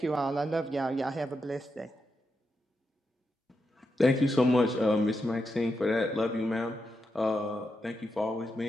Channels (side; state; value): both; normal; correlation 0.85